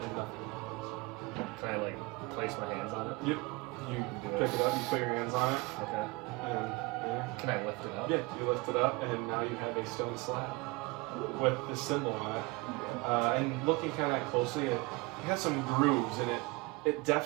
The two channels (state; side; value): quieter; left; 24.7 dB